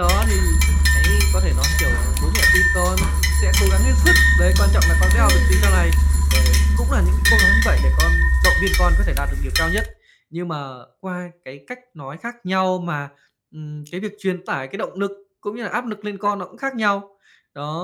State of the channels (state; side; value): identical; both; correlation 1.00